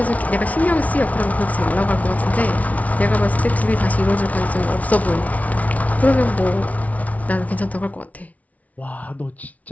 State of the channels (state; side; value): late; right; 0.070 ms